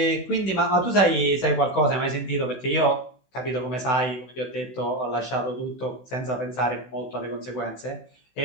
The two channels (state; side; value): late; right; 16 ms